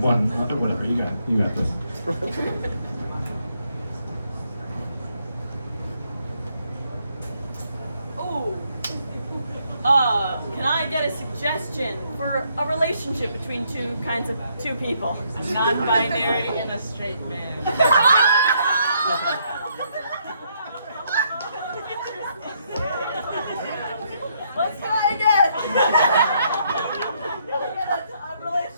1, whatever, you got this. Can I get a suggestion for a relationship between two people? Non-binary and a straight man. Let's try again. A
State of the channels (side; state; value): both; inverted; correlation -0.72